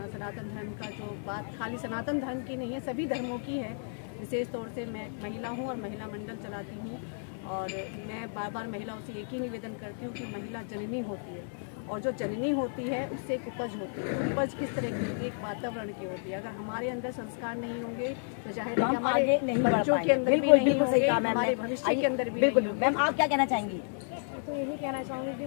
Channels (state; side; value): silent; right; digital silence